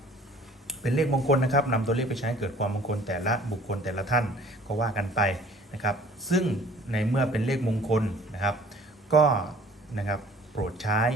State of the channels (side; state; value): both; normal; correlation 0.51